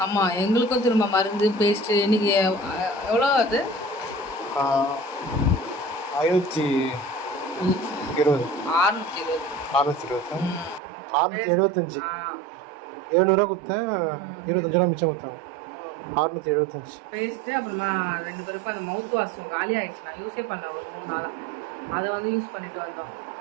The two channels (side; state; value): left; drops out; at 10.8 s